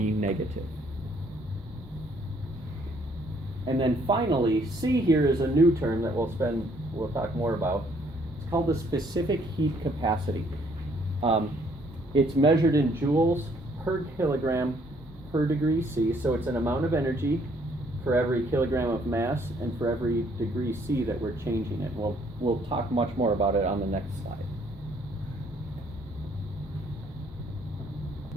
negative. And then finally, C here is a new term that we'll talk more about. It's called the specific heat capacity. It's measured in joules per kilogram per degree C, so it's an amount of energy for every kilogram of mass and for every degree C that we're changing it. We'll talk much more about it on the next slide.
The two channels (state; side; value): normal; both; correlation 0.65